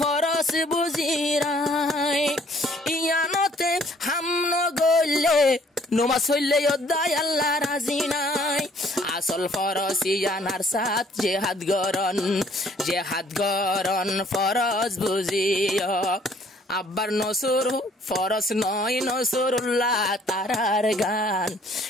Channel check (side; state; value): both; normal; correlation 0.60